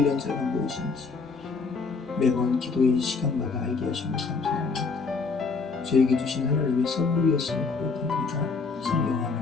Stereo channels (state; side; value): quieter; right; 4.5 dB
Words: 자가 무엇인지 매번 기도의 시간마다 알게 하시면 감사합니다. 저에게 주신 하나님의 선물이었음을 고백합니다. 성령